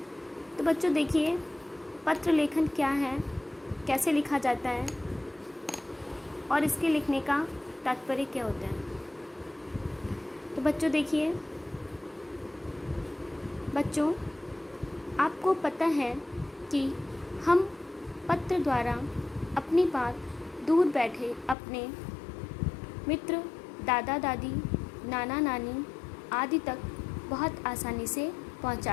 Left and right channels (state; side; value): drops out; right; at 21.6 s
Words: तो बच्चों देखिए, पत्र लेखन क्या है, कैसे लिखा जाता है और इसके लिखने का तात्पर्य क्या होता है। तो बच्चों देखिए, बच्चों आपको पता है कि हम पत्र द्वारा अपनी बात दूर बैठे अपने मित्र, दादा दादी, नाना नानी आदि तक बहुत आसानी से